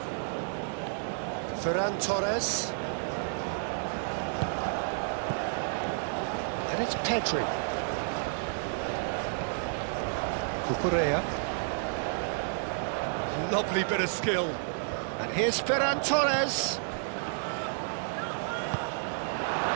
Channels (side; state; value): left; silent; digital silence